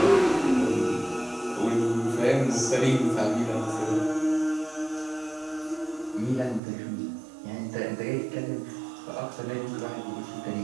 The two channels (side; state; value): left; drops out; at 6.6 s